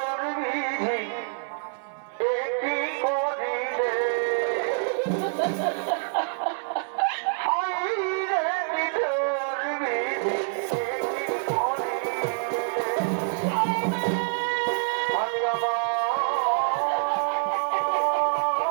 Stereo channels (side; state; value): left; silent; 61 dB below the other